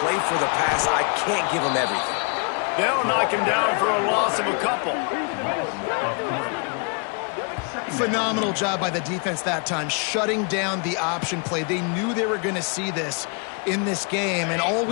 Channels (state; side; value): quieter; right; 37.1 dB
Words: play for the pass. I can't give them everything. They'll knock him down for a loss of a couple. Phenomenal job by the defense that time, shutting down the option play. They knew they were going to see this in this game, and all